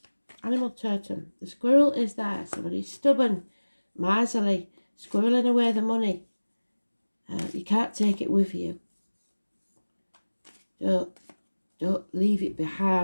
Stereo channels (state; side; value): inverted; both; correlation -1.00